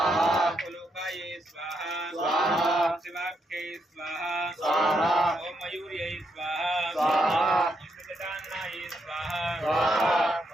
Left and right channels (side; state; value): both; normal; correlation 0.79